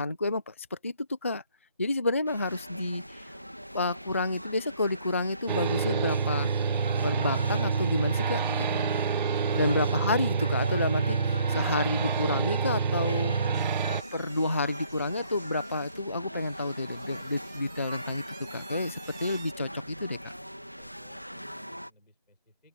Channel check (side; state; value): both; inverted; correlation -0.64